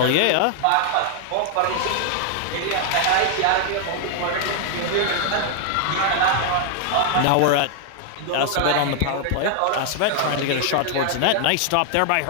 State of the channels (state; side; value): different; both; correlation 0.00